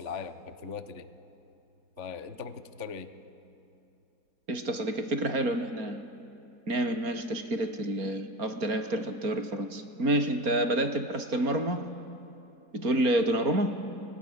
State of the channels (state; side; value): late; left; 4.3 ms